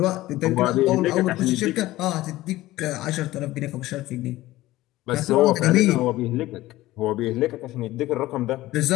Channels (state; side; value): quieter; right; 16.9 dB